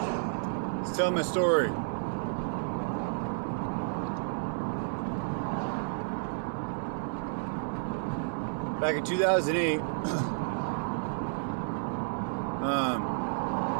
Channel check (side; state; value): left; silent; digital silence